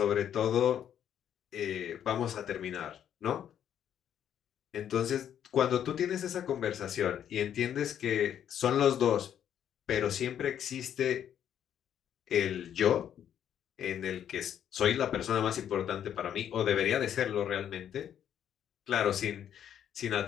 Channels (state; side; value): quieter; right; 9.7 dB